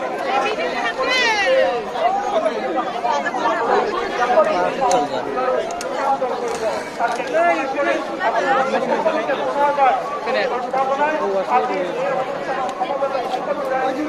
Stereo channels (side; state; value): both; identical; correlation 1.00